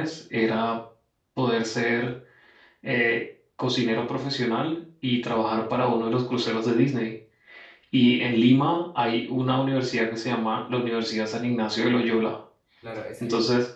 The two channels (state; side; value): identical; both; correlation 1.00